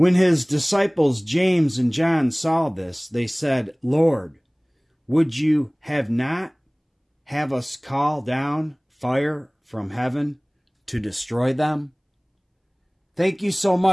his disciples James and John saw this, they said, Lord, would you have us call down fire from heaven to destroy them? Thank you so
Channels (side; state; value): both; identical; correlation 1.00